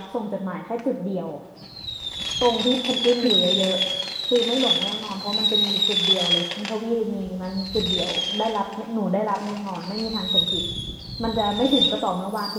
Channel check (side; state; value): both; identical; correlation 1.00